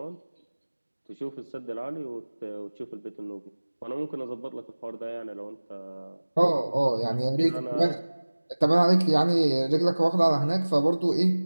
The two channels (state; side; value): inverted; both; correlation -1.00